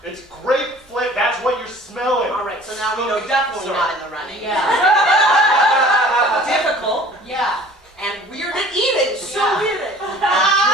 It's grape flip, that's what you're smelling. All right, so now we know definitely Sorry. not in the running. Yeah. Difficult Yeah. and weird at eating. So Yeah. weird at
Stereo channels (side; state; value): both; normal; correlation 0.48